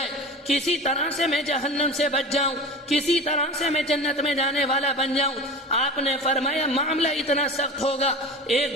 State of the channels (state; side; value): normal; both; correlation 0.33